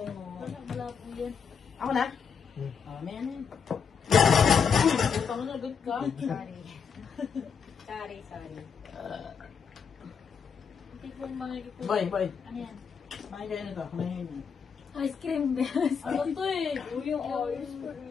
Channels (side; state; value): right; quieter; 6.4 dB